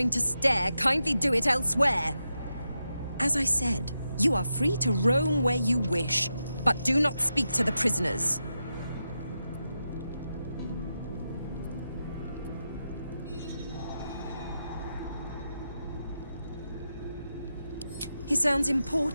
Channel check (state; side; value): inverted; both; correlation -0.88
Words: to stare, kindly do it elsewhere. As I said, you are free to roam where you wish, but do not speak to the prisoners. He sounds